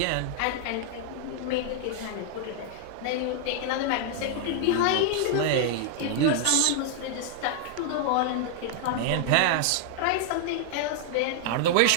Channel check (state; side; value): different; both; correlation 0.00